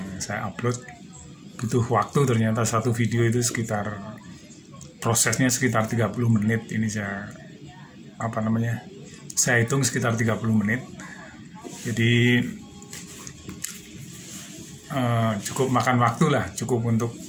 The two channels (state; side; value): identical; both; correlation 1.00